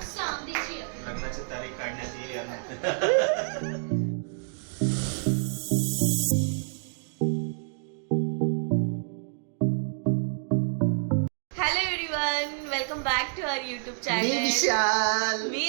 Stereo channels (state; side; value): silent; left; digital silence